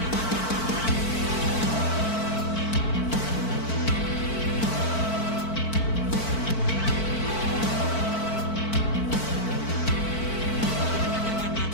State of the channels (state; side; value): late; right; 4.5 ms